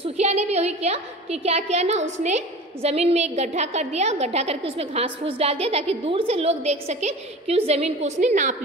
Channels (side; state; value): both; normal; correlation 0.36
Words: ने भी वही किया कि क्या किया ना, उसने ज़मीन में एक गड्ढा कर दिया, गड्ढा करके उसमें घास फूस डाल दिया ताकि दूर से लोग देख सके कि उस ज़मीन को उसने नाप